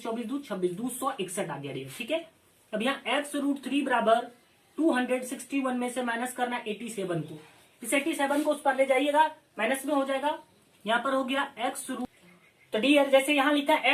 24 दू 26 261 आ गया डियर। ठीक है, अब यहाँ x √3 बराबर 261 में से माइनस करना 87 को, इस 87 को उस पर ले जाइएगा माइनस में हो जाएगा, यहाँ पर हो गया x √। तो डियर जैसे यहाँ लिखा है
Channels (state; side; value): identical; both; correlation 1.00